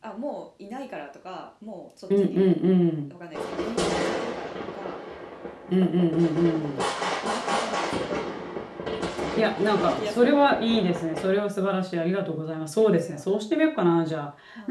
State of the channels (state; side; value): identical; both; correlation 1.00